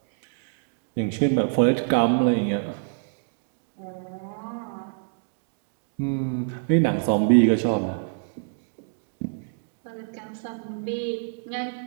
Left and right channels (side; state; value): left; silent; digital silence